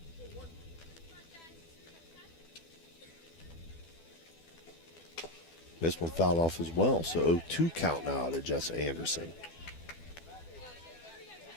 This one fouled off as well, so 0-2 count now to Jessa Anderson.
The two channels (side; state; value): right; late; 12 ms